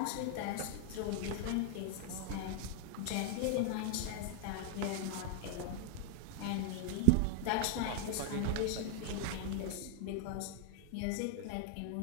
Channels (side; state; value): both; different; correlation -0.01